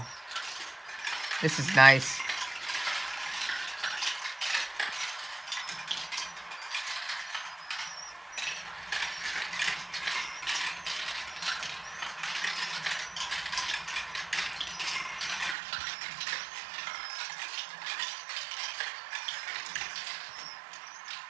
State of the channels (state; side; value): drops out; left; at 15.6 s